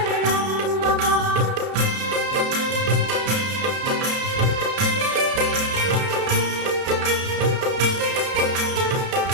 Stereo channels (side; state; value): left; late; 32 ms